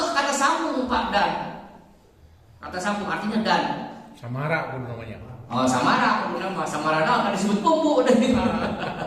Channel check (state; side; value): identical; both; correlation 1.00